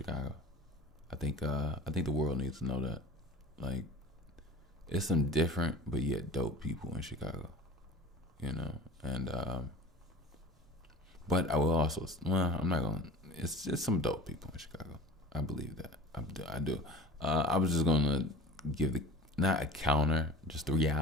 I think the world needs to know that. Like, it's some different but yet dope people in Chicago. You know, and but I will also, well, I'm not gonna. It's just some dope people in Chicago. I believe that. I do. I was just gonna give the not a counter, just the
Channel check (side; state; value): both; normal; correlation 0.39